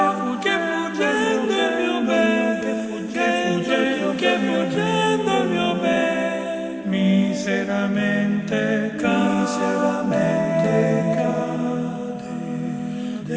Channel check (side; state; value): both; identical; correlation 1.00